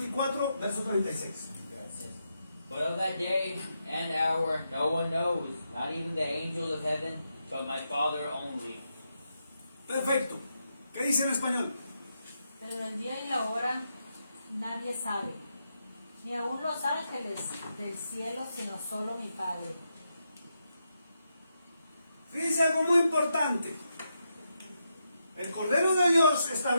verso 36. Gracias. But of that day and hour no one knows, not even the angels of heaven, but my Father only. Perfecto. ¿Qué dice en español? Pero del día y la hora nadie sabe, ni aun los ángeles del cielo, sino solo mi Padre. Fíjense algo muy importante. El Cordero de Dios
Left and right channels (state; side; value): inverted; both; correlation -0.84